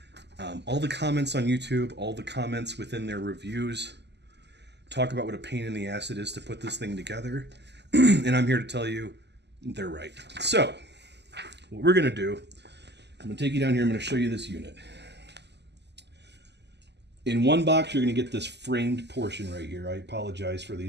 All the comments on YouTube, all the comments within their reviews talk about what a pain in the ass it is to put this thing together, and I'm here to tell you they're right. So, what we're going to do, I'm going to take you down here, I'm going to show you this unit. In one box, you're going to get this framed portion right here. I apologize for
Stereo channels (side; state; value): left; late; 0.50 ms